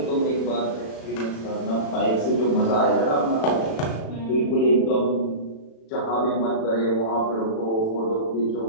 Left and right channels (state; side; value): late; right; 36 ms